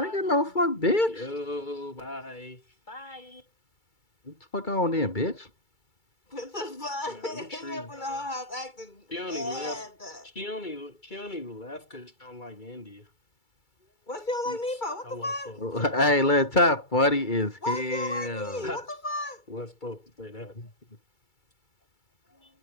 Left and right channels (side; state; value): right; late; 2.3 ms